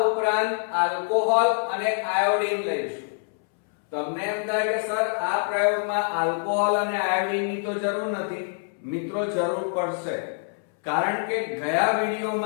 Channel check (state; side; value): silent; right; 61 dB below the other